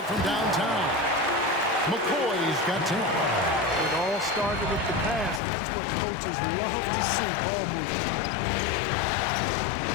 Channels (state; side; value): drops out; right; at 5.4 s